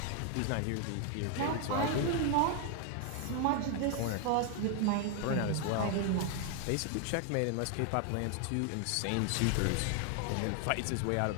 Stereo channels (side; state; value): both; different; correlation 0.01